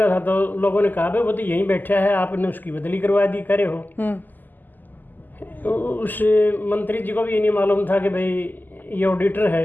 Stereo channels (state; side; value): late; right; 0.087 ms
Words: था तो लोगों ने कहा भाई वो तो यहीं बैठा है, आपने उसकी बदली करवा दी, करे हो। उस मंत्री जी को भी ये नहीं मालूम था कि भाई ये ऑडिटर है।